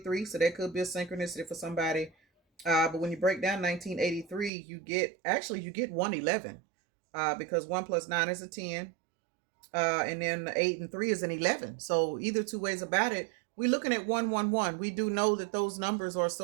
so that could be a synchronicity for somebody. But when you break down 1983, you get 111, because 1 plus 9 is a 10, and then 8 and 3 is an 11. So either two ways about it, we're looking at 111. We do know that those numbers are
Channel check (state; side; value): drops out; left; at 4.5 s